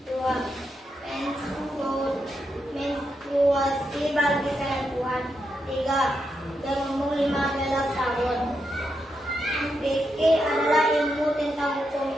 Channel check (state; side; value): normal; both; correlation 0.83